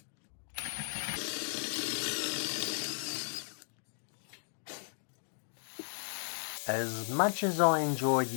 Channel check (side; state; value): right; silent; digital silence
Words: As much as I enjoy